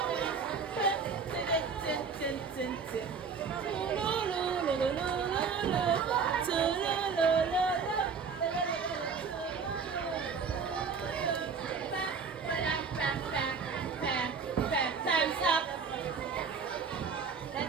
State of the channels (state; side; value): quieter; left; 5.5 dB